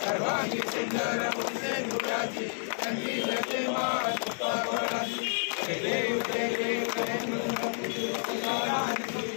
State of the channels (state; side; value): silent; right; digital silence